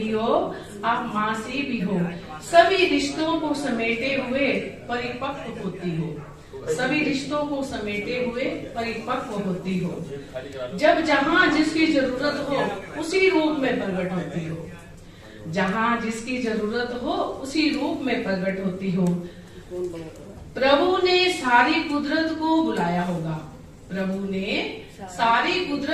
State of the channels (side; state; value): both; identical; correlation 1.00